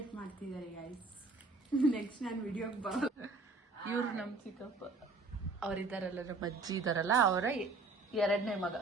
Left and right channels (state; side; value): quieter; left; 3.6 dB